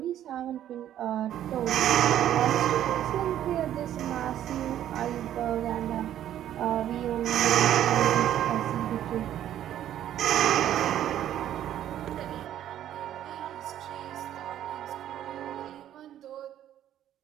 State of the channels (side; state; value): left; quieter; 11.5 dB